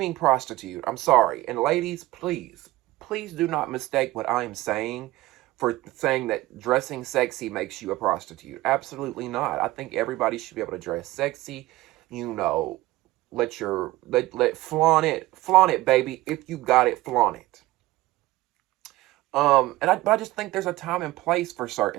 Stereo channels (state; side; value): quieter; left; 18.3 dB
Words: prostitute. I'm sorry. And ladies, please do not mistake what I am saying for saying that dressing sexy makes you a prostitute. Absolutely not. I think everybody should be able to dress sexy, you know, let flaunt it, baby. If you got it, flaunt it. But I just think there's a time and place for